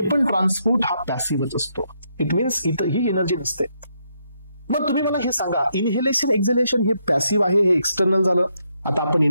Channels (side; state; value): both; inverted; correlation -0.77